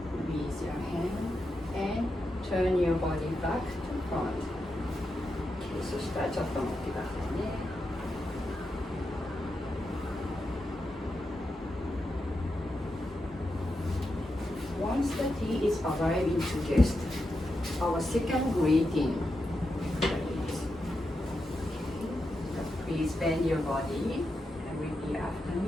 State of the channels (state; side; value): normal; both; correlation 0.87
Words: Release your hand and turn your body back to front. Okay, そしたらちょっと待ってくださいね。Once the tea is arriving to guests, our second greeting. Please bend your body and repeat after